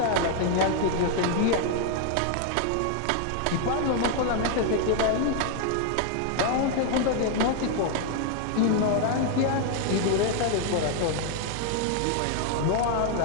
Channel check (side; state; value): both; different; correlation 0.00